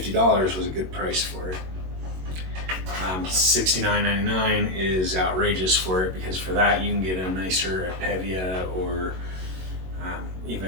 was a good price for it. $69.99 is outrageous for it, because for that you can get a nicer Pevia, or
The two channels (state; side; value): late; left; 21 ms